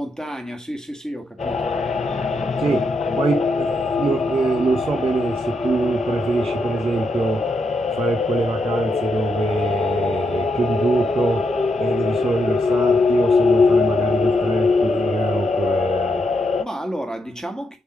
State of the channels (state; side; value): normal; both; correlation 0.81